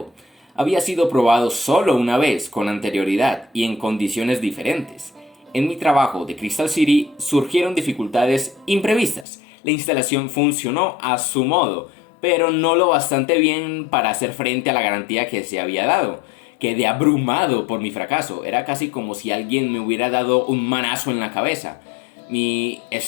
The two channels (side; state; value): right; drops out; at 9.2 s